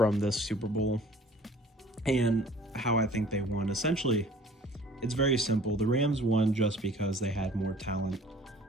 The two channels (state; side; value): normal; both; correlation 0.50